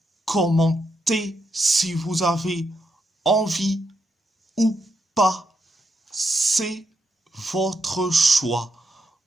commentez si vous avez envie ou pas. C'est votre choix.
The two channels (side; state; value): both; normal; correlation 0.81